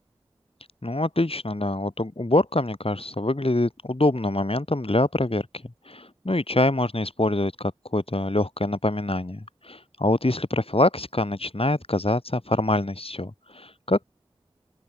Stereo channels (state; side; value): normal; both; correlation 0.66